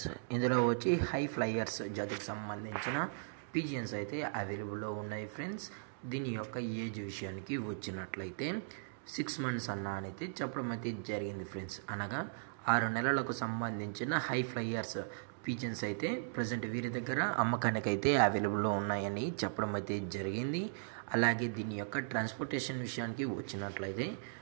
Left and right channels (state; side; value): silent; left; digital silence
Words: ఇందులో వచ్చి హై ఫ్లైయర్స్ జాతికి సంబంధించిన పిజియన్స్ అయితే అవైలబుల్లో ఉన్నాయి ఫ్రెండ్స్. దీని యొక్క ఏజ్ విషయానికి వచ్చినట్లయితే 6 months అన్న అయితే చెప్పడం అయితే జరిగింది ఫ్రెండ్స్. అనగా 6 నెలలకు సంబంధించిన హై ఫ్లైయర్స్ పిజియన్స్ అయితే ప్రజెంట్ వీరి దగ్గర అమ్మకానికి అయితే అవైలబుల్లో ఉన్నాయని చెప్పడం అయితే జరిగింది. అలాగే దీని యొక్క ట్రాన్స్పోర్టేషన్ విషయానికి వచ్చినట్లయితే